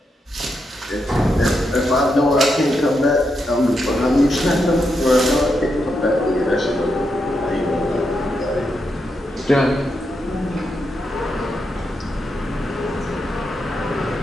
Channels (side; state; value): both; normal; correlation 0.83